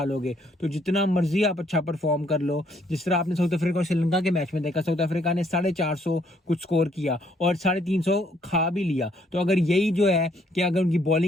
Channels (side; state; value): both; normal; correlation 0.67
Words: लोगे। तो जितना मर्जी आप अच्छा परफॉर्म कर लो, जिस तरह आपने साउथ अफ्रीका और श्रीलंका के मैच में देखा, साउथ अफ्रीका ने 450 कुछ स्कोर किया और 350 खा भी लिया। तो अगर यही जो है कि अगर उनकी